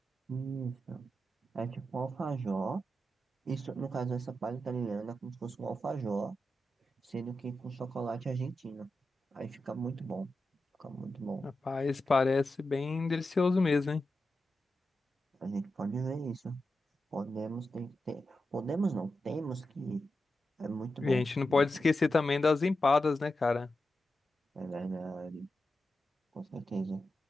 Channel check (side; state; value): both; normal; correlation 0.90